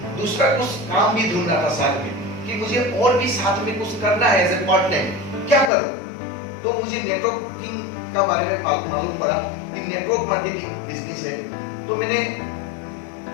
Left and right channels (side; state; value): right; drops out; at 5.7 s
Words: दूसरा कुछ काम भी ढूंढ रहा था साथ में, कि मुझे और भी साथ में कुछ करना है एज ए पार्ट टाइम, क्या करूं? तो मुझे नेटवर्किंग का बारे में मालूम पड़ा कि नेटवर्क मार्केटिंग बिजनेस है। तो मैंने